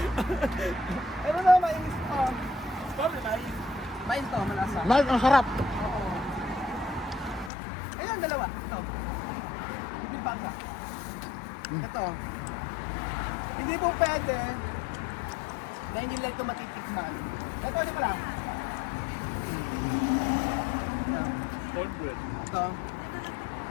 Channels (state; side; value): drops out; right; at 7.5 s